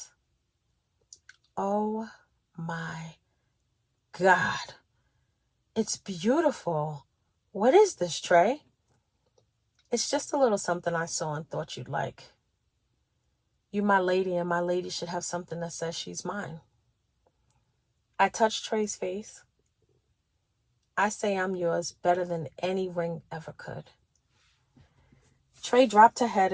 Oh my God. It's beautiful. What is this, Trey? "It's just a little something I saw and thought you'd like. You my lady, and my lady should have something that says she's mine." I touched Trey's face. "I say I'm yours better than any ring ever could." Trey dropped her head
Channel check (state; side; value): identical; both; correlation 1.00